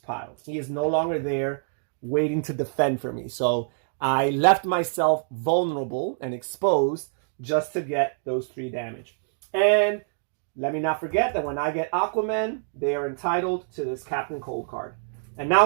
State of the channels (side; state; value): left; silent; digital silence